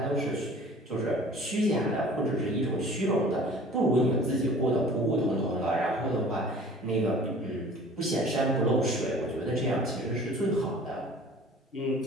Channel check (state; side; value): normal; both; correlation 0.46